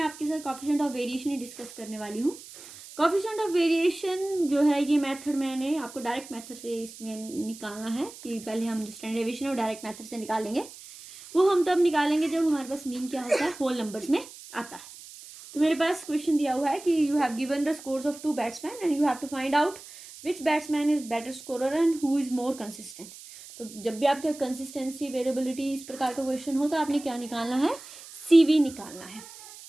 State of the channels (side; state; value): right; noise; hiss, 17 dB below the sound